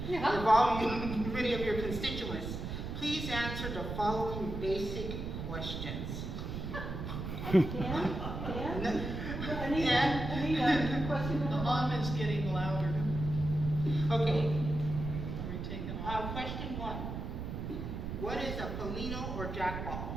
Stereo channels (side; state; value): right; noise; rumble, 5 dB below the sound